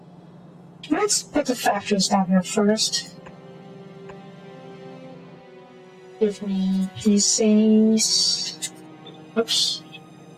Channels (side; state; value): both; identical; correlation 1.00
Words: Let's put the factories down here first. Give me these things. Oops.